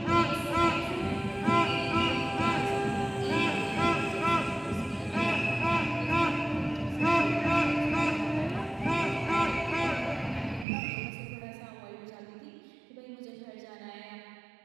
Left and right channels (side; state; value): left; drops out; at 10.7 s